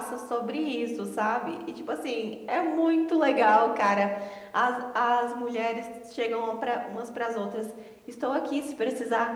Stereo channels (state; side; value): identical; both; correlation 1.00